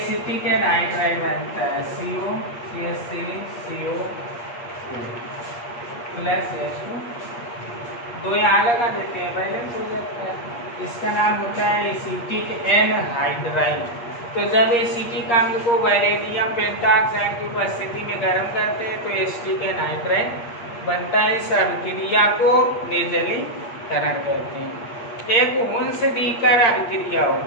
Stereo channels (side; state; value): right; late; 8.4 ms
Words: एनहाइड्राइड बनता है, COCH3CO प्लस H2, दो यहाँ लगा देते हैं, बैलेंस हो जाता है। इसका नाम होता है एसिटिक एनहाइड्राइड। तो जब एसिटिक अम्ल को वैलेडियम पेंटाऑक्साइड की उपस्थिति में गर्म करते हैं तो एसिटिक एनहाइड्राइड बनता है। इस अभिक्रिया को निर्जलीकरण कहते हैं। एक हुंस-डीकर अभिक्रिया